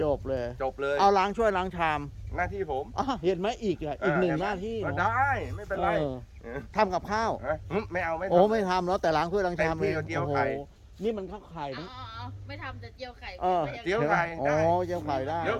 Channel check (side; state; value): both; identical; correlation 1.00